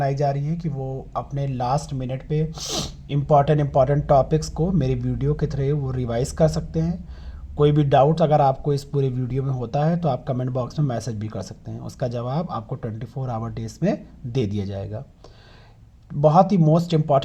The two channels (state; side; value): identical; both; correlation 1.00